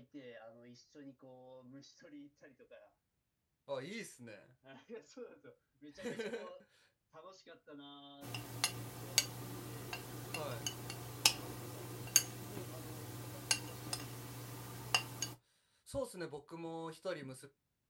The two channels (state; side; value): identical; both; correlation 1.00